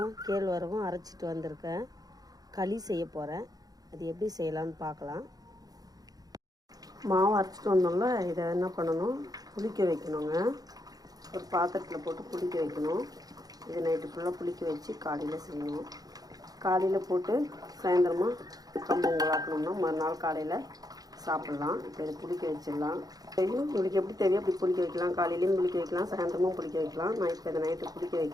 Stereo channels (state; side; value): late; left; 0.18 ms